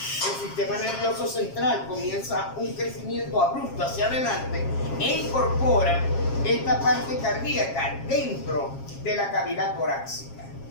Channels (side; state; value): right; late; 7.4 ms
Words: sistema nervioso central comienza un crecimiento abrupto hacia adelante e incorpora esta parte cardíaca dentro de la cavidad torácica.